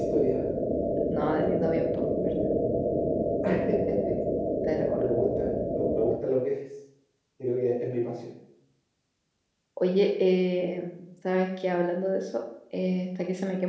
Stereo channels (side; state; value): both; identical; correlation 1.00